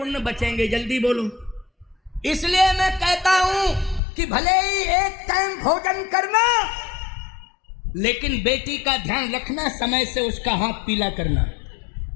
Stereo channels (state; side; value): drops out; right; at 4.0 s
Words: बचेंगे? जल्दी बोलो। इसलिए मैं कहता हूं कि भले ही एक टाइम भोजन करना, लेकिन बेटी का ध्यान रखना, समय से उसका हाथ पीला करना।